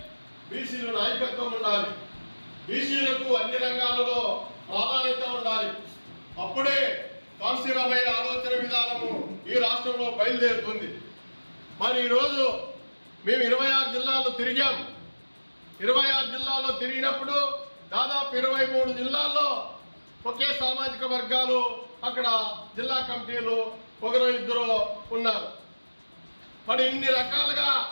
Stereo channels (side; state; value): both; inverted; correlation -1.00